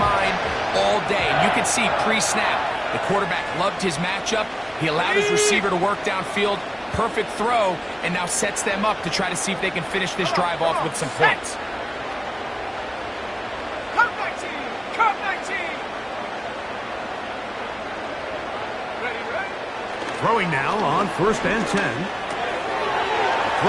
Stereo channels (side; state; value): both; identical; correlation 1.00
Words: all day. And you can see pre-snap, the quarterback loved his matchup. He allowed his receiver to work downfield. Perfect throw, and now sets them up to try to see if they can finish this drive off with some points. Come 19! Come 19! Ready, ready? Throwing now on first and 10.